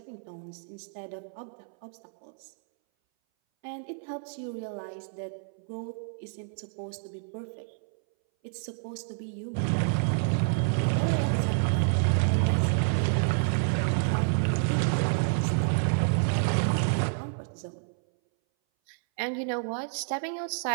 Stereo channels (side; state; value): left; silent; 58 dB below the other